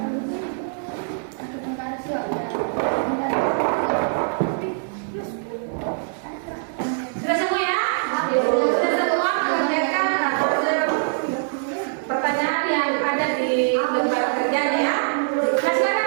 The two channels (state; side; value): silent; left; 58 dB below the other